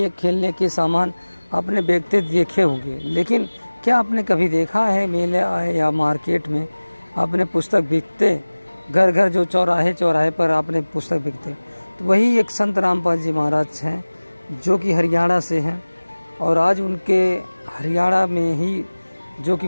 खेलने के सामान आपने बेचते देखे होंगे, लेकिन क्या आपने कभी देखा है मेले या मार्केट में आपने पुस्तक बिकते? घर घर जो चौराहे चौराहे पर आपने पुस्तक बिकते, तो वही एक संत रामपाल जी महाराज हैं जो कि हरियाणा से हैं। और आज उनके हरियाणा में ही जो कि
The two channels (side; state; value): both; inverted; correlation -1.00